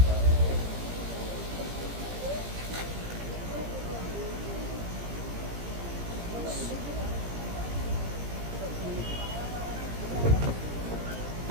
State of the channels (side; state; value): left; late; 17 ms